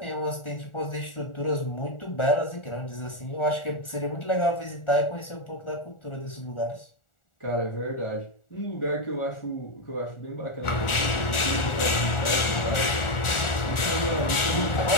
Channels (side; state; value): right; late; 1.4 ms